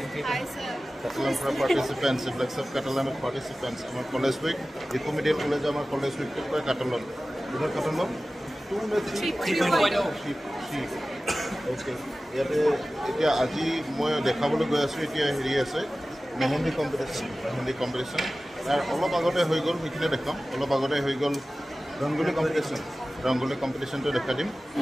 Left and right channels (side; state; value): both; normal; correlation 0.96